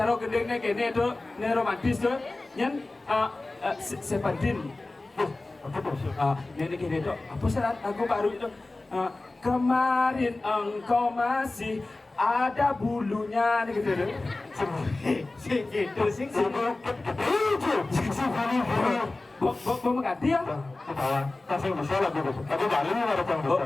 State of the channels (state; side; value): quieter; right; 3.1 dB